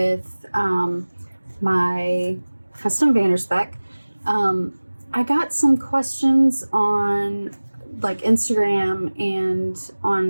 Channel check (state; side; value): inverted; both; correlation -1.00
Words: my custom Spek. I got some questions on like Instagram and